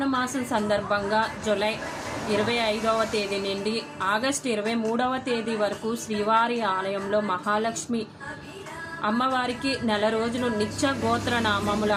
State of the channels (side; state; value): both; identical; correlation 1.00